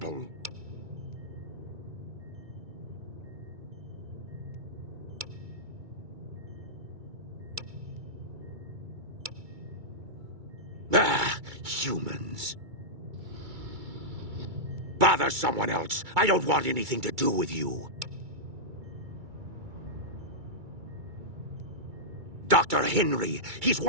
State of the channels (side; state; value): left; late; 2.3 ms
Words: Ah, humans. Bother someone else. I don't want anything to do with you. Dr. Henry, he's